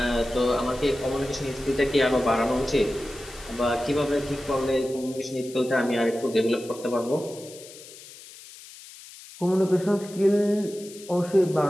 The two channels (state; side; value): noise; left; hiss, 18 dB below the sound